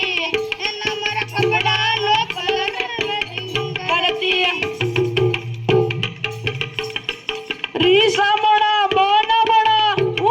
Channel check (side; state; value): both; identical; correlation 1.00